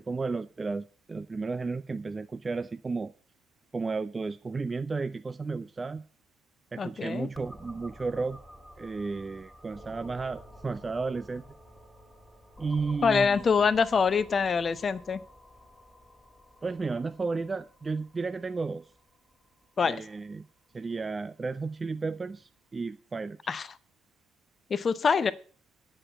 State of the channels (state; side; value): normal; both; correlation 0.86